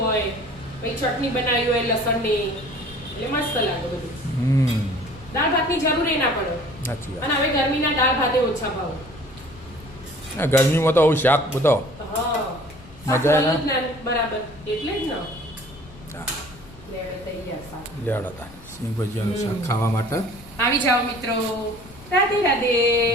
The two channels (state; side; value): noise; left; rumble, 20 dB below the sound